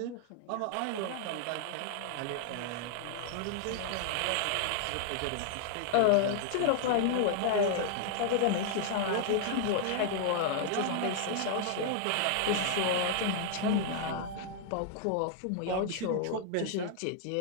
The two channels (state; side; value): different; both; correlation 0.00